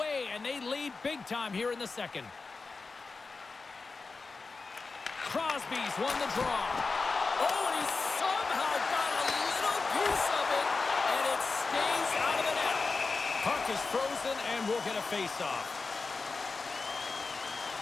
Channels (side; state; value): right; quieter; 4.1 dB